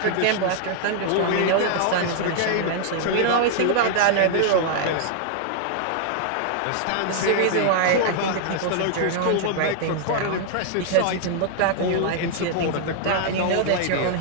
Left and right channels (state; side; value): different; both; correlation 0.00